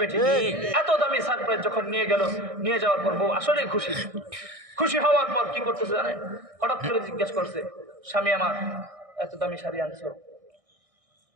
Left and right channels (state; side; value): late; left; 1.6 ms